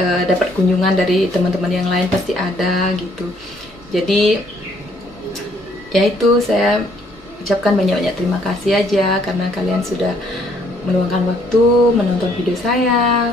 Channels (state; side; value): normal; both; correlation 0.65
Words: dapat kunjungan dari teman-teman yang lain pasti ada gitu. Jadi ya itu, saya ucapkan banyak-banyak terima kasih aja karena kalian sudah meluangkan waktu menonton video saya.